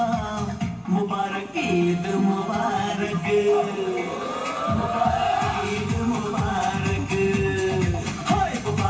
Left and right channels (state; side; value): identical; both; correlation 1.00